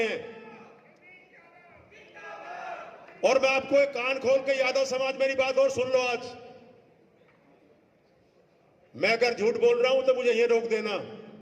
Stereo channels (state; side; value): identical; both; correlation 1.00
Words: और मैं आपको एक कान खोल के, यादव समाज मेरी बात और सुन लो। आज मैं अगर झूठ बोल रहा हूं तो मुझे ये रोक देना।